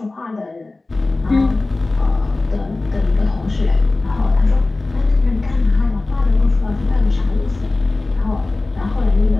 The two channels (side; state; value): right; quieter; 3.2 dB